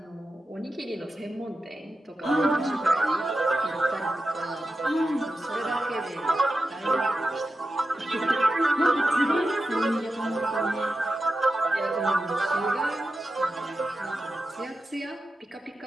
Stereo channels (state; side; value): normal; both; correlation 0.91